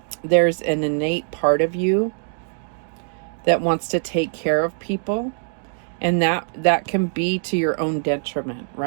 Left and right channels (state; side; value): silent; left; digital silence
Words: there's an innate part of you that wants to take care of people. And that can be to your own detriment,